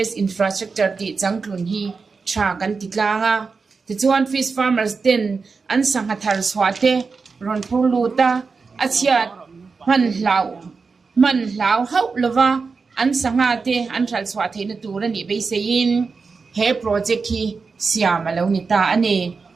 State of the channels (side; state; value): left; quieter; 4.7 dB